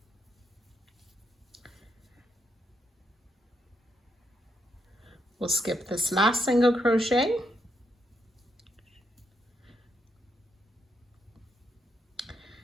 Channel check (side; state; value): both; normal; correlation 0.79